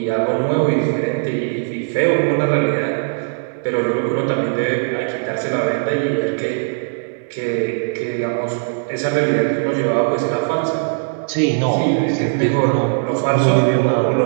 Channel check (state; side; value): silent; left; digital silence